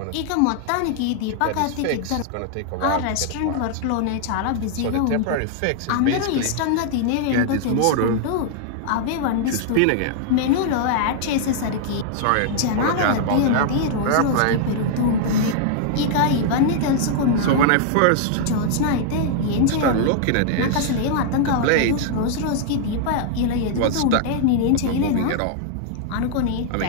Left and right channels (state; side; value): different; both; correlation -0.01